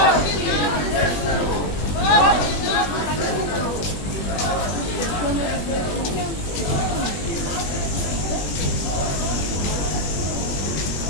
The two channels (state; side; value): late; right; 21 ms